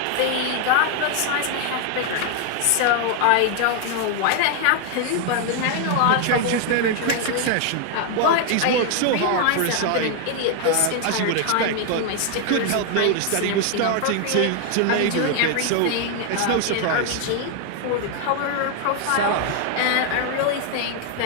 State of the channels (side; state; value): both; different; correlation 0.00